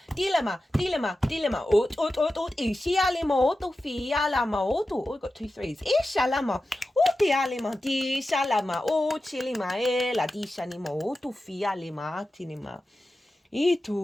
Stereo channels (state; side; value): normal; both; correlation 0.93